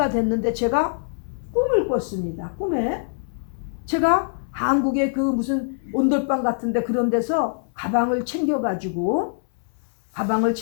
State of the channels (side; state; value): right; silent; 63 dB below the other